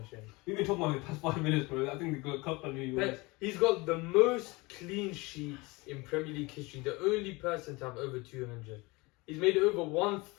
We've been talking about it the past 5 minutes, bro. I think the good cup on you. But he's got the most clean sheets in Premier League history, the only person to have over 200. He's made over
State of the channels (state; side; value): quieter; right; 24.4 dB